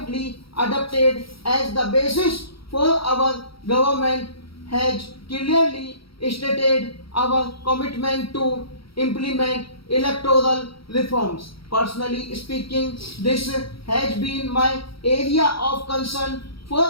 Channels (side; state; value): right; late; 0.75 ms